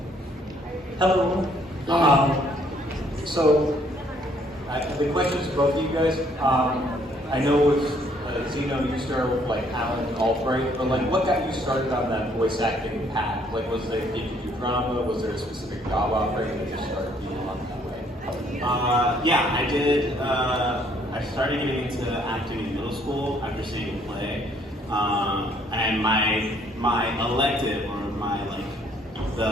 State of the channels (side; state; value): both; normal; correlation 0.65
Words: Hello. The question is both of you guys. I know with Zeno, you started with like Alan Albright, but like, what got you started on that voice acting path? Like, was there, did you do drama? Was there a specific job offering that you just started being on that way? Yeah, I did. I started getting into acting in middle school after seeing a play, and my elective or my